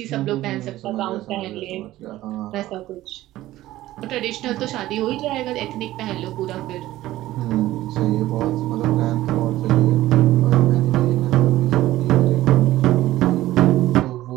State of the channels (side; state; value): left; quieter; 15.6 dB